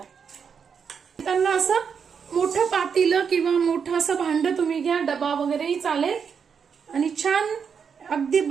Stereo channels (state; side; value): quieter; left; 6.6 dB